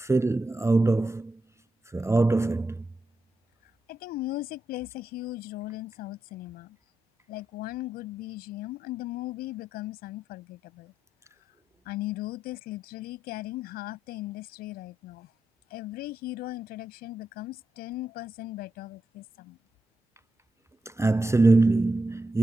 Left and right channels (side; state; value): both; normal; correlation 0.86